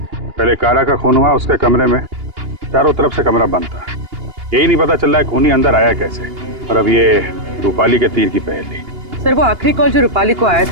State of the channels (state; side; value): late; left; 2.8 ms